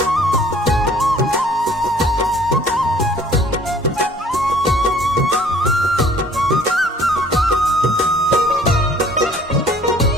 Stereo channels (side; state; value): both; normal; correlation 0.55